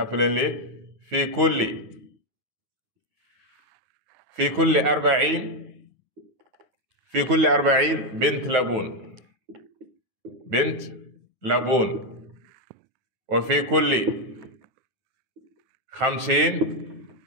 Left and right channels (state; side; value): late; left; 9.2 ms